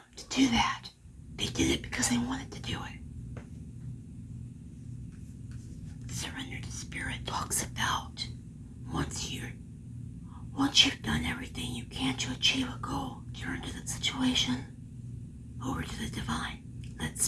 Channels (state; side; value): identical; both; correlation 1.00